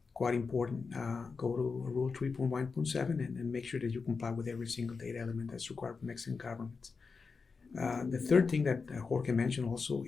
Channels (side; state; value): right; quieter; 4.8 dB